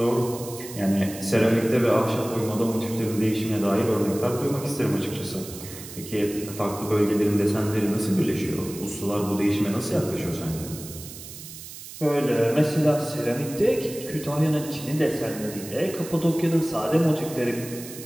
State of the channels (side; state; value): right; noise; hiss, 13 dB below the sound